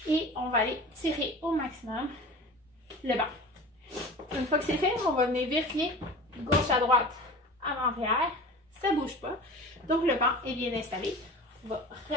et on va aller tirer au maximum le banc. Une fois que c'est fait, on va venir vérifier gauche à droite, avant-arrière. Ça ne bouge pas. Donc, le banc est bien installé. On va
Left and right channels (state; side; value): normal; both; correlation 0.36